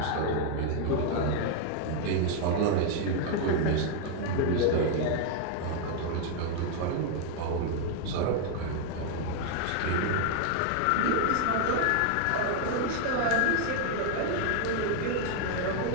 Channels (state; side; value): different; both; correlation 0.00